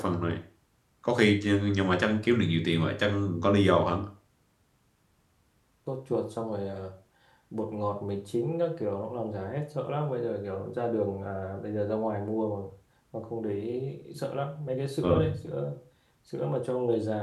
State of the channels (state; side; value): identical; both; correlation 1.00